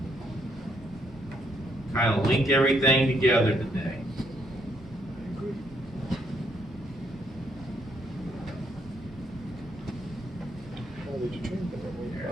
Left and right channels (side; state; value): both; normal; correlation 0.72